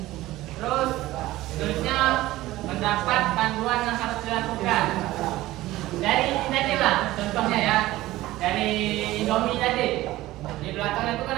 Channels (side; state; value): left; quieter; 16.8 dB